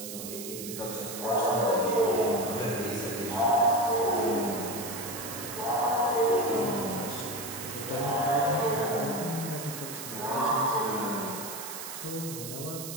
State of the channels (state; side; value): noise; right; hiss, 9 dB below the sound